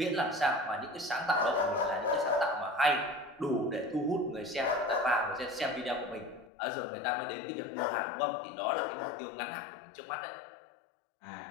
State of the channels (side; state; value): right; drops out; at 6.5 s